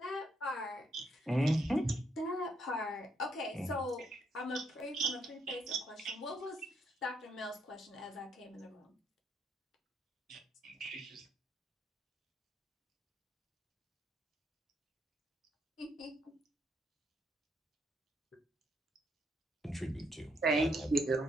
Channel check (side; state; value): both; normal; correlation 0.74